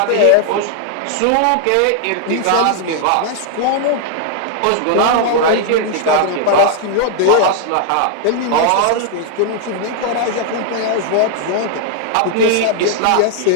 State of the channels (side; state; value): both; different; correlation 0.00